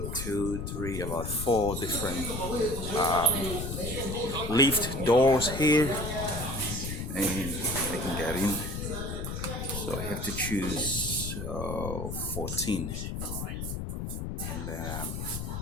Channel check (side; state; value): left; noise; rumble, 5 dB below the sound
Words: about 4 different lift doors here. And I can get in. So I have to choose 14. And